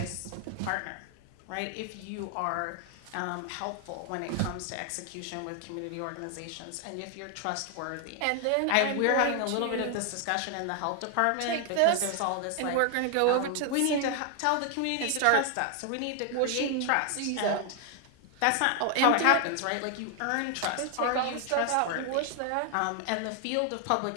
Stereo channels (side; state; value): both; different; correlation 0.00